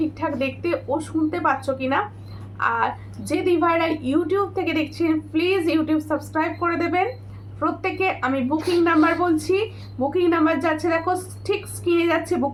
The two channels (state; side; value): identical; both; correlation 1.00